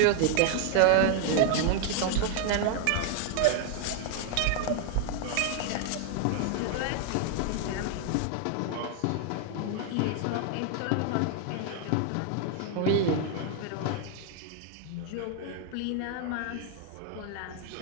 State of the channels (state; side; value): different; both; correlation 0.00